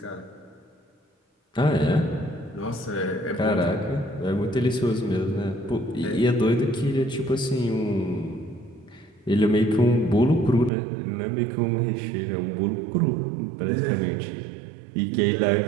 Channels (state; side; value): drops out; left; at 10.7 s